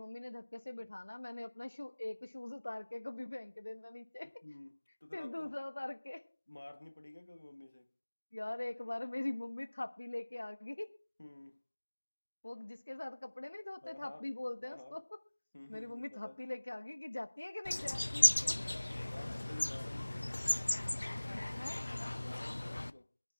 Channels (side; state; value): both; inverted; correlation -1.00